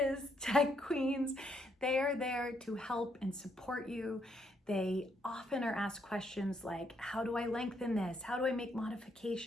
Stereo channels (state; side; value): normal; both; correlation 0.74